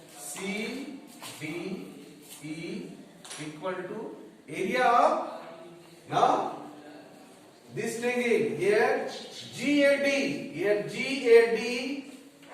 C, D, E equal to area of, now this triangle here GAD, here GAD,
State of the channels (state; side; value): identical; both; correlation 1.00